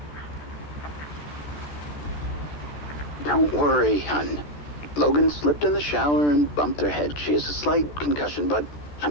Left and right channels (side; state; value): right; late; 14 ms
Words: Don't worry, hon. Logan slipped in the shower and bumped her head. She has a slight concussion, but